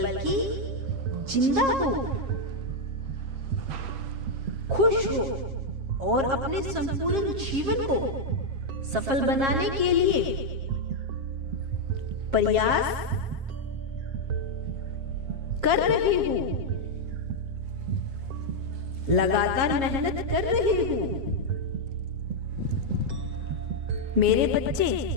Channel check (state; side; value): late; left; 7.4 ms